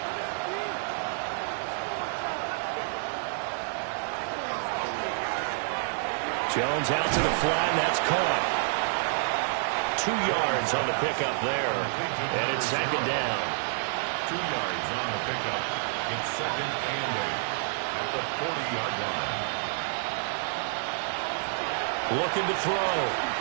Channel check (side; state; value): left; silent; digital silence